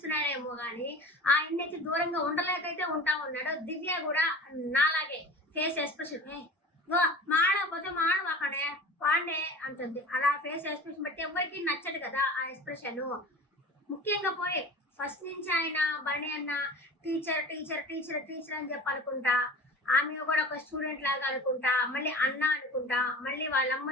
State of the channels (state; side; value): normal; both; correlation 0.37